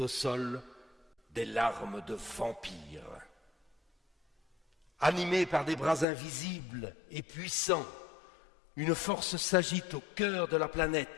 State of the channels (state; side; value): drops out; right; at 6.1 s